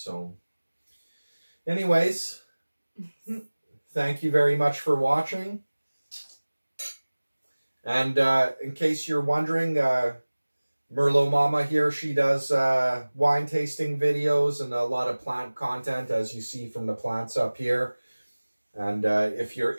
anyways, thank you very much for watching. And in case you're wondering, Merlot Mama here, she does wine tasting videos and a lot of plant content, as you see from the plants up here. And if you're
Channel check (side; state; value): both; inverted; correlation -1.00